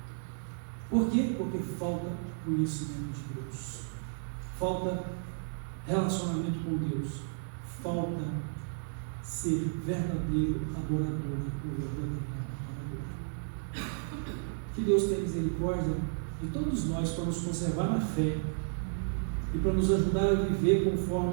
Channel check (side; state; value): left; silent; digital silence